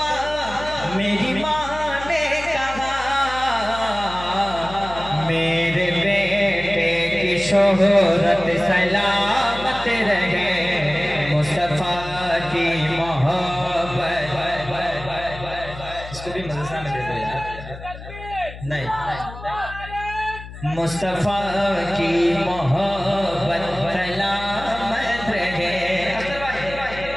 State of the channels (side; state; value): left; noise; hum, 13 dB below the sound